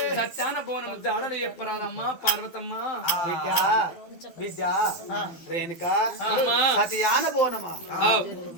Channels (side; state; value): right; late; 12 ms